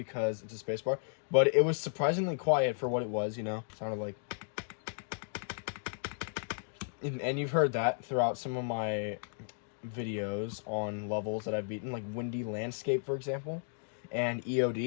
it's a spacebar. But it was surprisingly quiet for what it was, you know? Sounded like... And you've heard that throughout some of my videos on levels that I've beaten, like Windy Landscape, for example, and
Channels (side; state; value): right; silent; digital silence